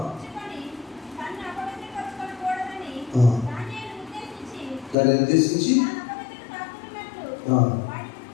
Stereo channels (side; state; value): right; drops out; at 5.0 s